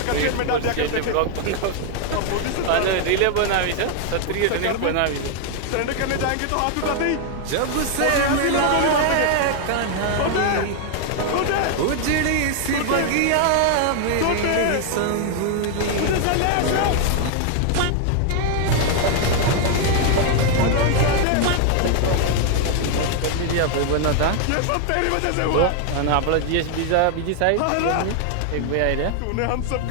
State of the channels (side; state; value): both; different; correlation 0.00